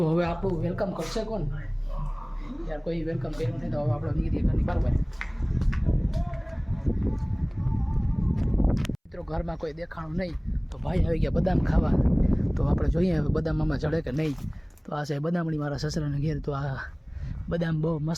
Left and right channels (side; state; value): both; identical; correlation 1.00